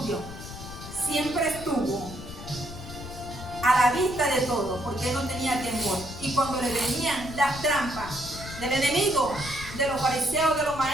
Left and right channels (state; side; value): noise; left; rumble, 12 dB below the sound